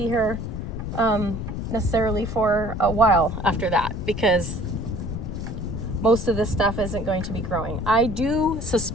here necessarily for a while after that, because most of this stuff isn't going to be growing. I do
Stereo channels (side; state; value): left; noise; rumble, 5 dB below the sound